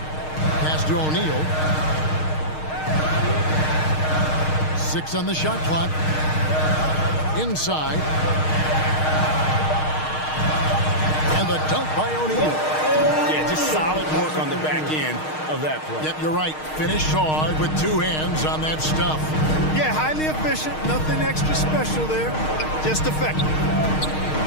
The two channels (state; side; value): late; right; 6.5 ms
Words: Pass to O'Neal. 6 on the shot clock. Inside. And the dunk by O'Neal. Yeah, just solid work on the back end of that play. Yep, you're right. Finished hard with 2 hands on that stuff. Yeah, highly efficient. Nothing extra special there. Just effective.